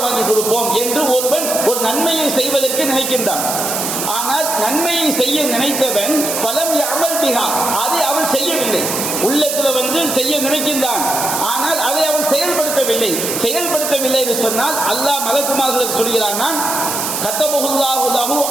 வாங்கி கொடுப்போம் என்று ஒருவன் ஒரு நன்மையை செய்வதற்கு நினைக்கின்றான். ஆனால் நன்மையை செய்ய நினைத்தவன் பலம் யஅமல் பிஹா, அதை அவன் செய்யவில்லை. உள்ளத்துல செய்ய நினைக்கின்றான், ஆனால் அதை அவன் செயல்படுத்தவில்லை. செயல்படுத்தவில்லை என்று சொன்னால் அல்லாஹ் மலக்குமார்களுக்கு சொல்கிறான், கத்தபஹுல்லாஹு லஹு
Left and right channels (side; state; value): right; noise; hiss, 2 dB below the sound